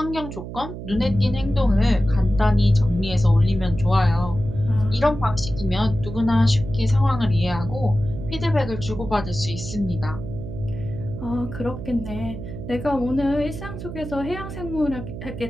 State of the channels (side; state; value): right; noise; hum, 9 dB below the sound